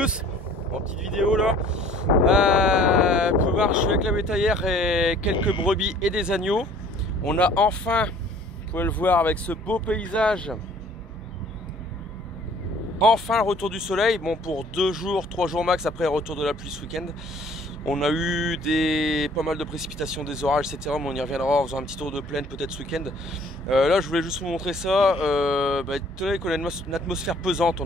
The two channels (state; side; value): normal; both; correlation 0.54